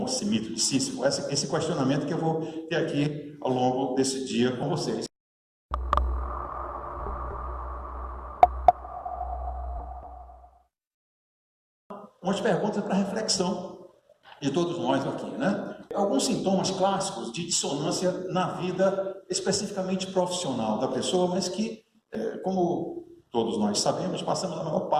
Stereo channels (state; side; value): identical; both; correlation 1.00